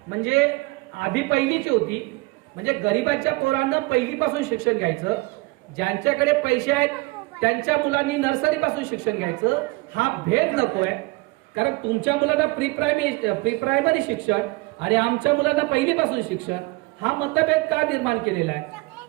म्हणजे आधी पहिलीची होती, म्हणजे गरिबांच्या पोरांना पहिलीपासून शिक्षण घ्यायचं. ज्यांच्याकडे पैसे आहेत त्यांच्या मुलांनी नर्सरी पासून शिक्षण घ्यायचं. हा भेद नकोय. कारण तुमच्या मुलांना प्री प्रायमरी शिक्षण आणि आमच्या मुलांना पहिलीपासून शिक्षण, हा मतभेद का निर्माण केलेला आहे.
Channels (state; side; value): quieter; left; 24.1 dB